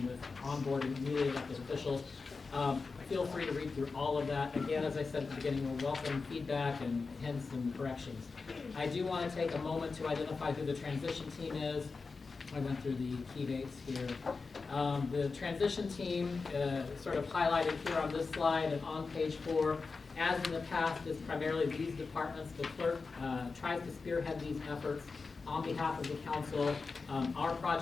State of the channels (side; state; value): right; quieter; 4.4 dB